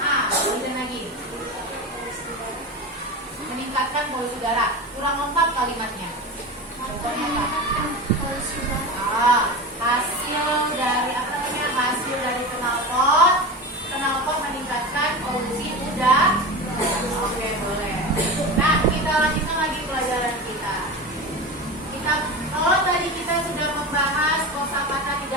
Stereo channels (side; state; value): both; normal; correlation 0.26